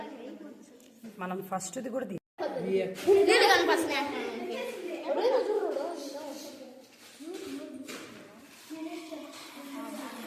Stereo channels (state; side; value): identical; both; correlation 1.00